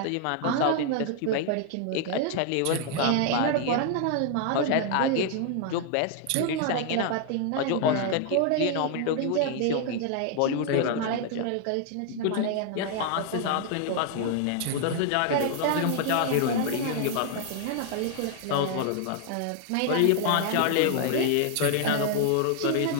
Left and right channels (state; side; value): different; both; correlation 0.00